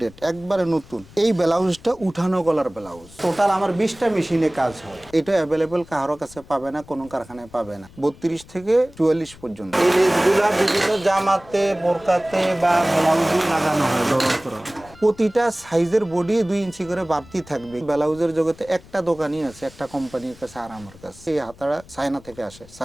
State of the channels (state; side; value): noise; left; rumble, 22 dB below the sound